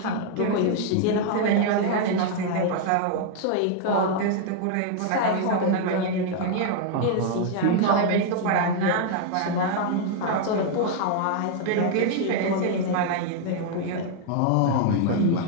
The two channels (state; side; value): different; both; correlation 0.00